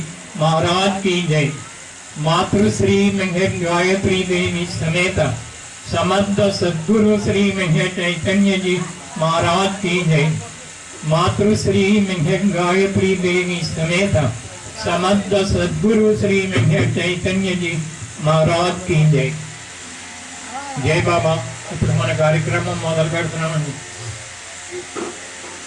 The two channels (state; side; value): identical; both; correlation 1.00